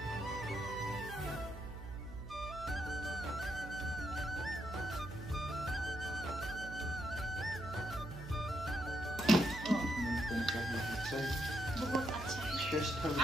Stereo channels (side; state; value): right; noise; hum, 10 dB below the sound